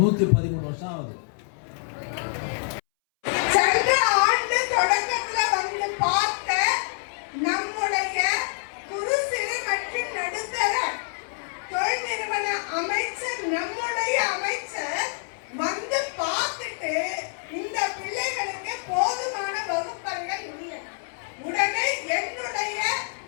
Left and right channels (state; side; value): silent; right; 61 dB below the other